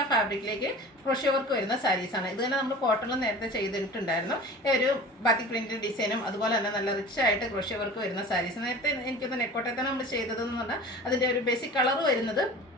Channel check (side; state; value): both; normal; correlation 0.39